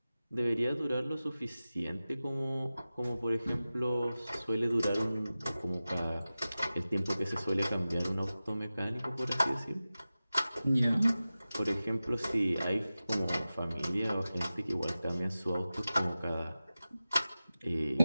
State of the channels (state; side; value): inverted; both; correlation -0.95